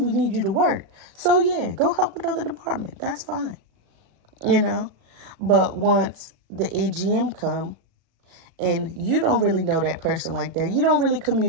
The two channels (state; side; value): late; left; 36 ms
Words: We need you to work. So, yeah, go help another department. That's fine, you know. But once the AGM come and you don't really know that person like that, you don't really